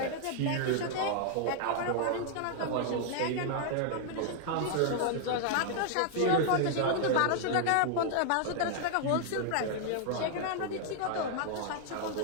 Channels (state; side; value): different; both; correlation 0.00